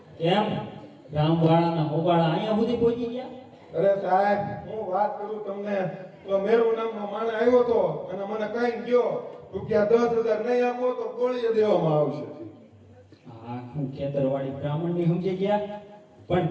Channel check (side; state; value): both; identical; correlation 1.00